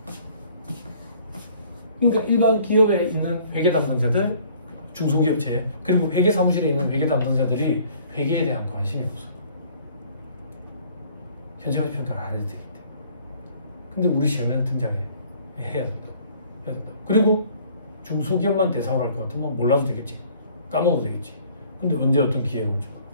그러니까 일반 기업에 있는 회계 담당자들, 중소기업체 그리고 회계사무실에 있는 회계 담당자들이 회계에 대한 관심이 없어. 현재가치 평가를 안 해도 되기 때문에. 근데 우리 시험에는 등장해야 된다고. 그리고 중소기업만 대상으로 할 것 같으면 몰라도 되겠지. 까먹어도 되겠지. 근데 언제 어떤 기회가 올지 몰라.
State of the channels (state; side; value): inverted; both; correlation -0.57